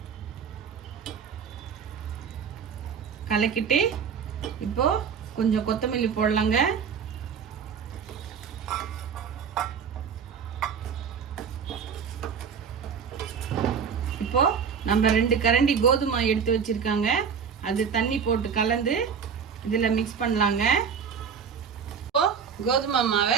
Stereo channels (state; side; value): quieter; left; 6.7 dB